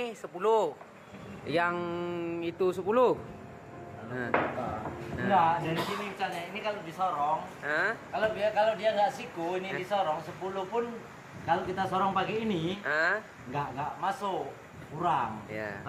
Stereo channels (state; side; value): identical; both; correlation 1.00